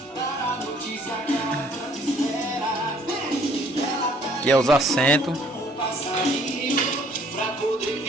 dar a notícia que ela tanto espera. Aqui é os assentos. Pra poder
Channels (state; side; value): normal; both; correlation 0.60